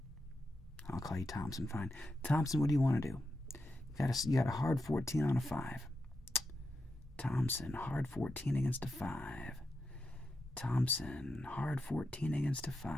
I'll call you Thompson, fine. Thompson, what do you want to do? You got a hard 14 on a 5. Thompson, hard 14 against a 5. Thompson, hard 14 against a 5.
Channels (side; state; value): both; normal; correlation 0.87